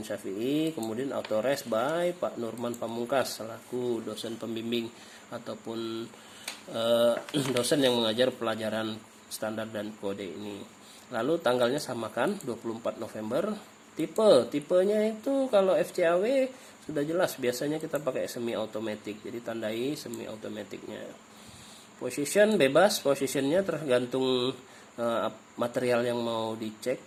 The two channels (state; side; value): identical; both; correlation 1.00